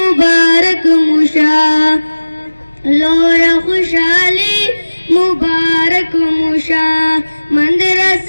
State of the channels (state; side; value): inverted; both; correlation -1.00